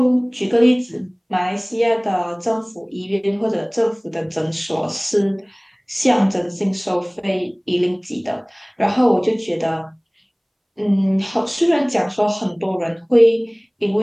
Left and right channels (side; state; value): both; identical; correlation 1.00